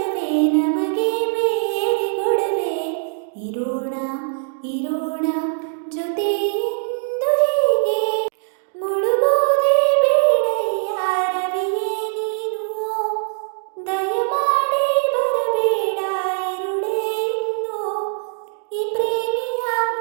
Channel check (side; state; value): left; silent; digital silence